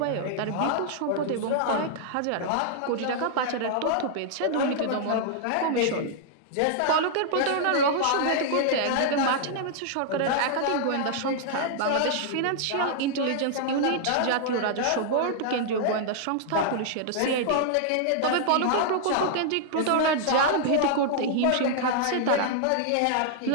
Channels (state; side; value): different; both; correlation -0.01